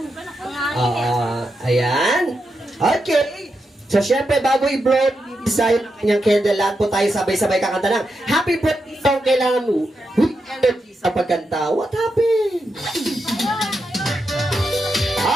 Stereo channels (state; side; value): normal; both; correlation 0.86